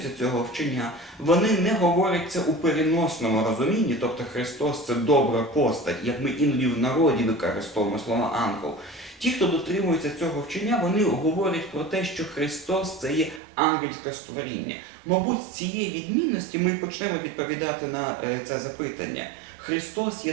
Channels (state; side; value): drops out; left; at 13.4 s